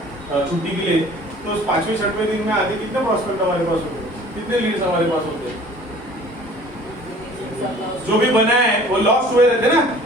छुट्टी के लिए, तो 5वें 6वें दिन में आते कितने प्रॉस्पेक्ट हमारे पास होते हैं, कितने लीड्स हमारे पास होते हैं। जो भी बना है वो लॉस्ट हुए रहते ना,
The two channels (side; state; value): both; normal; correlation 0.49